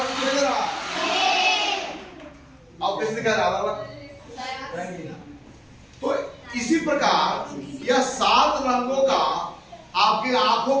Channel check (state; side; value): identical; both; correlation 1.00